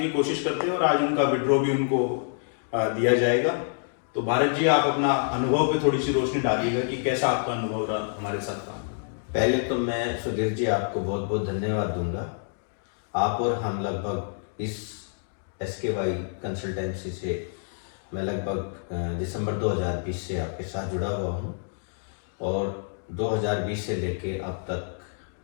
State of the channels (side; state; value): right; silent; digital silence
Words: कोशिश करते हैं और आज उनका विड्रॉ भी उनको दिया जाएगा। तो भारत जी, आप अपना अनुभव पे थोड़ी सी रोशनी डालिएगा कि कैसा आपका अनुभव रहा हमारे साथ काम। पहले तो मैं सुधीर जी आपको बहुत बहुत धन्यवाद दूंगा। आप और हम लगभग इस SKY कंसल्टेंसी से मैं लगभग दिसंबर 2020 से आपके साथ जुड़ा हुआ हूँ और 2020 से लेके अब तक